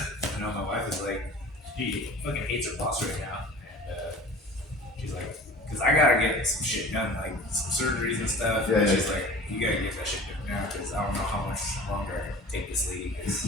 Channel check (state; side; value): normal; both; correlation 0.42